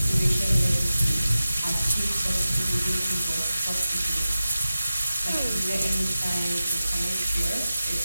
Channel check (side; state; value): both; inverted; correlation -0.94